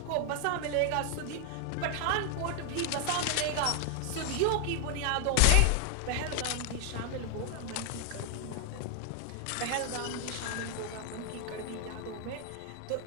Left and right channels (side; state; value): both; different; correlation 0.00